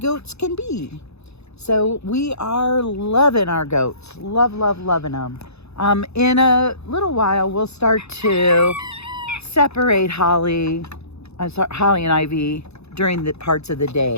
can be. So we are loving our goats. Loving them. In a little while, we'll start to separate Holly and Ivy during the parts of the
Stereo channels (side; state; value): right; late; 0.80 ms